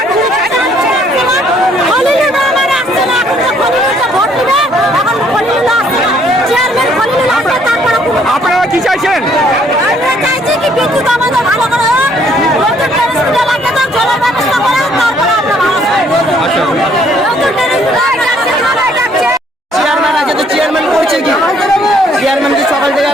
আপনারা কি চাইছেন? চেয়ারম্যান আছে তো চেয়ারম্যান করছে কি? চেয়ারম্যান কি সকাল থেকে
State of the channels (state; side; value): normal; both; correlation 0.64